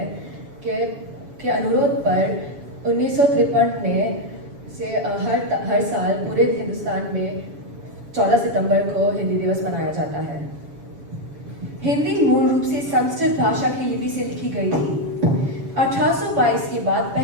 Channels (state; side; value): late; left; 7.1 ms